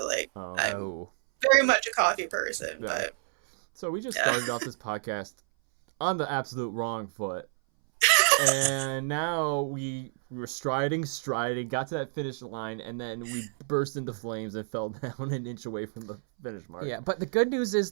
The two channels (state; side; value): silent; left; 59 dB below the other